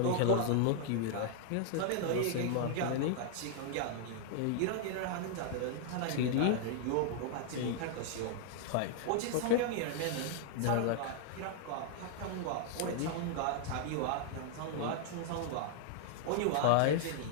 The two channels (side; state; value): both; different; correlation -0.01